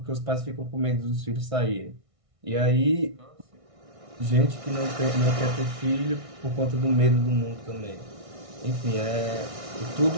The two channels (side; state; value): left; late; 1.6 ms